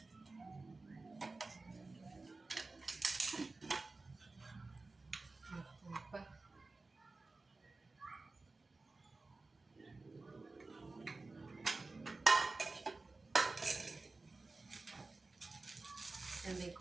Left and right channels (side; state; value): left; quieter; 3.5 dB